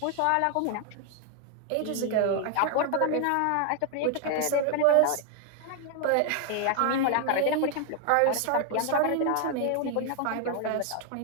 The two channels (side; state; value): both; different; correlation 0.00